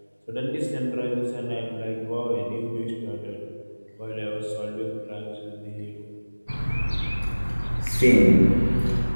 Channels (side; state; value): both; inverted; correlation -1.00